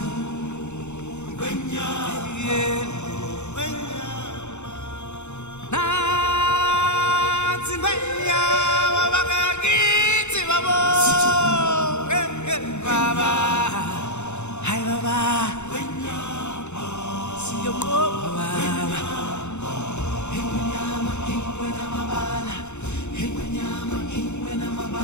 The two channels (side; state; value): right; late; 0.83 ms